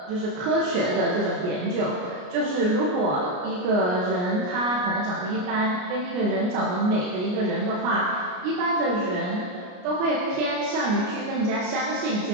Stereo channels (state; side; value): late; left; 33 ms